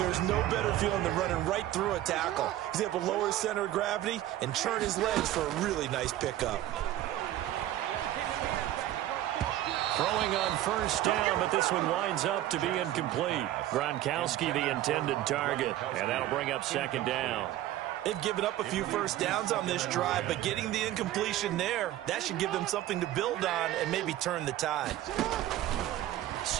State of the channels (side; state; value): left; quieter; 13.8 dB